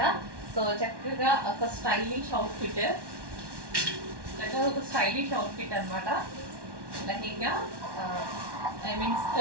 సో చక్కగా ఒక స్టైలిష్ అవుట్ఫిట్, చక్కగా ఒక స్టైలిష్ అవుట్ఫిట్ అనమాట. లెహంగా ఐ మీన్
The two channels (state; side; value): late; left; 1.1 ms